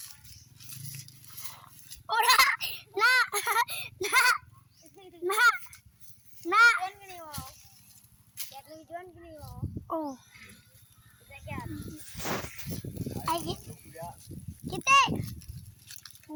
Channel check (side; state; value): both; identical; correlation 1.00